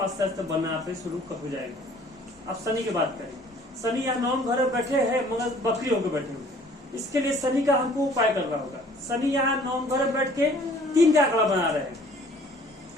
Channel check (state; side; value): normal; both; correlation 0.54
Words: आस्ते आस्ते बनना पे शुरू हो जाएगा। अब शनि की बात करें, शनि यहाँ नवम घर में बैठे हैं मगर बकरी होकर बैठे हुए, इसके लिए शनि का हमको उपाय करना होगा। शनि यहाँ नवम घर में बैठ के 3 का आंकड़ा बना रहे